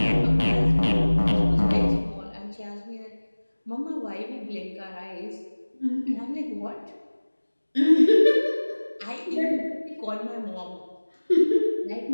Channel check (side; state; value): both; inverted; correlation -1.00